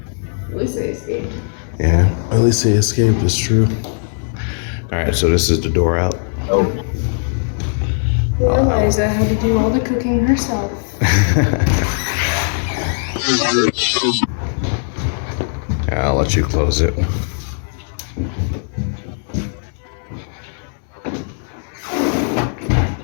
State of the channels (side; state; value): right; silent; 64 dB below the other